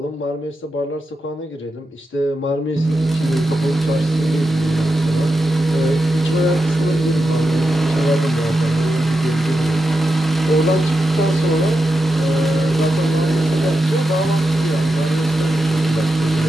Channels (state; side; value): normal; both; correlation 0.88